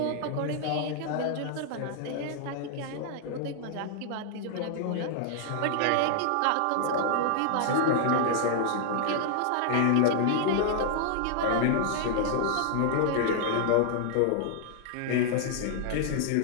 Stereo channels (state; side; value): different; both; correlation 0.00